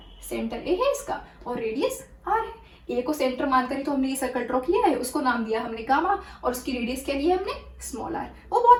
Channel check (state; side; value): identical; both; correlation 1.00